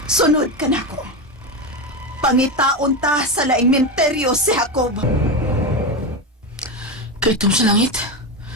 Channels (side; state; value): both; normal; correlation 0.15